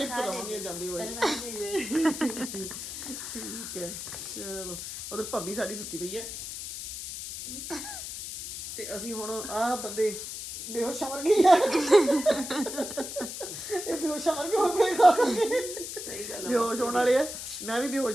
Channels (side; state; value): left; noise; hiss, 8 dB below the sound